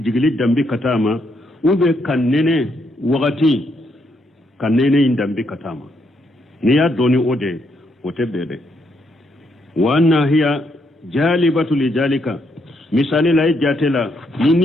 dambi katama ube kanene wakati kanene indambi katama ni ya doni ode ote bebe wa anna hiya jalibatu lijalika misali la jatela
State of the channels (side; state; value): both; normal; correlation 0.76